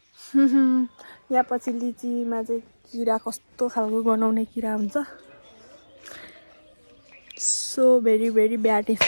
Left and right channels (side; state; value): both; inverted; correlation -1.00